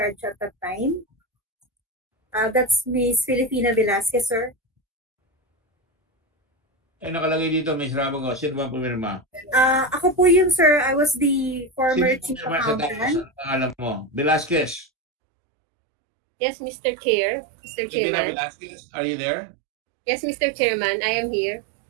at that time. That's Miss Filipina Velasquez, sir. Eh, nakalagay dito, Ms. Rabago. Sino ba pumirma? Ako po yun, sir. I was the former Sino chief pumirma sa tapos? accountant. Ang pangalan mo? Velasquez. Yes, Mr. Chair. Mr. Filipina Chairman. Velasquez, are you there? Yes, Mr. Chairman, I am here.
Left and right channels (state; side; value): drops out; left; at 14.9 s